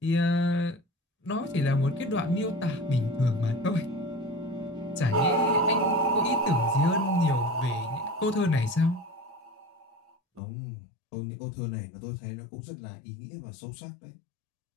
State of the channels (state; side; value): drops out; right; at 10.4 s